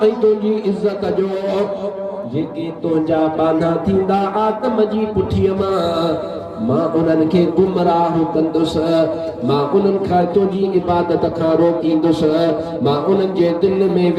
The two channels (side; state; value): both; identical; correlation 1.00